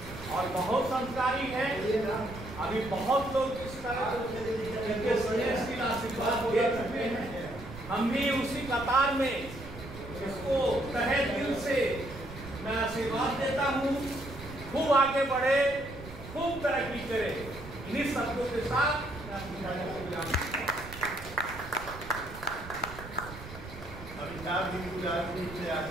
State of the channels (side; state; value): right; noise; rumble, 13 dB below the sound